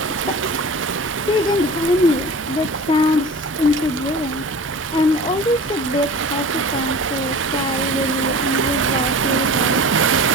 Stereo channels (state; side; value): normal; both; correlation 0.37